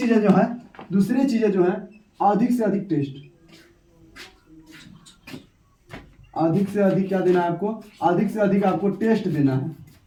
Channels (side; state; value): both; identical; correlation 1.00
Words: जो है अधिक से अधिक टेस्ट, अधिक से अधिक क्या देना है आपको, अधिक से अधिक आपको टेस्ट देना है,